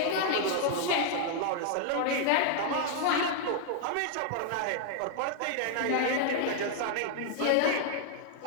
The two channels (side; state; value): both; different; correlation -0.01